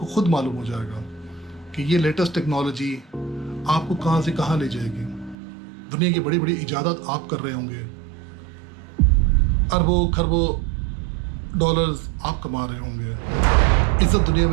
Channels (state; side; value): drops out; left; at 5.4 s